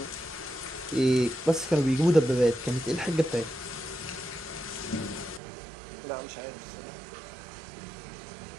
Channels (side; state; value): left; drops out; at 5.4 s